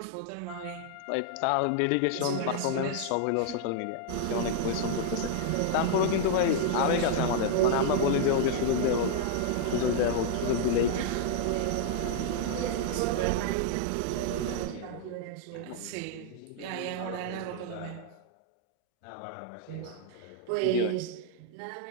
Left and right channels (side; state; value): both; different; correlation -0.01